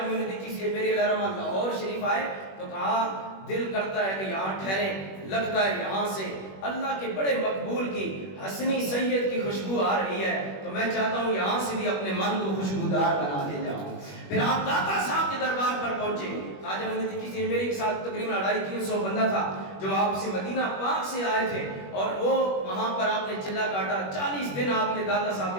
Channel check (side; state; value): right; late; 21 ms